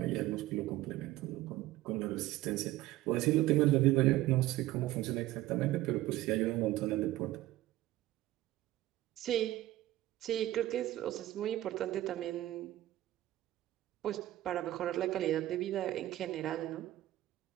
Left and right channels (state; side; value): quieter; left; 15.6 dB